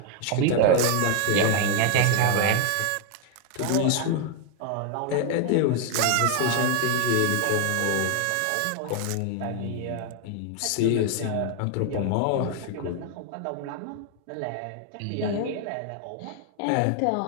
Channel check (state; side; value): different; both; correlation 0.00